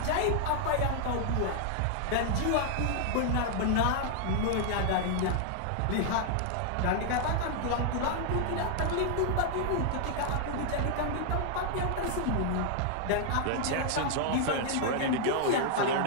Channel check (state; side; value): different; both; correlation 0.00